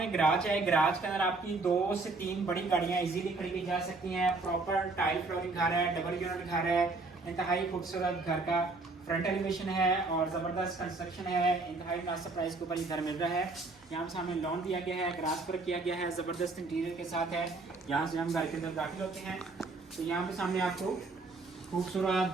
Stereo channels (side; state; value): left; quieter; 3.5 dB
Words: गराज है। गराज के अंदर आपकी 2 से 3 बड़ी गाड़ियाँ इजीली खड़ी की जा सकती हैं। प्रॉपर टाइल फ्लोरिंग घर है, डबल यूनिट घर है, इंतहाई खूबसूरत घर का फ्रंट एलिवेशन है और ज़बरदस्त कंस्ट्रक्शन है। इंतहाई मुनासिब प्राइस के ऊपर ये घर मिल रहा है। यहाँ सामने लॉन दिया गया है, ग्रास पर किया गया है, ज़बरदस्त इंटीरियर के साथ है। यहाँ से हम घर के अंदर दाखिल होते हैं तो यहाँ पे सामने आपको खूबसूरत